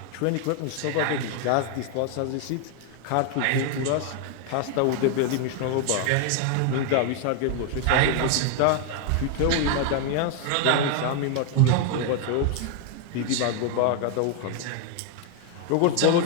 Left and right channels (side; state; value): both; different; correlation 0.00